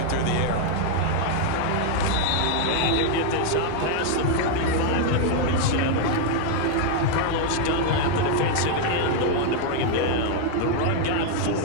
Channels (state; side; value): different; both; correlation 0.00